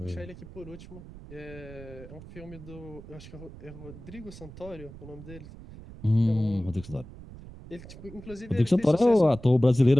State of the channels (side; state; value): right; noise; rumble, 16 dB below the sound